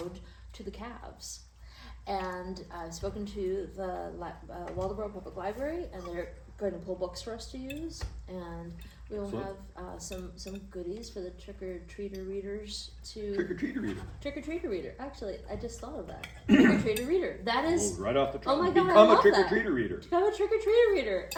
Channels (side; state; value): both; identical; correlation 1.00